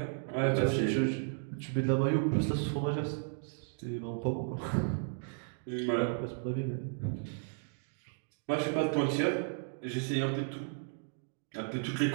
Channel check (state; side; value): silent; left; digital silence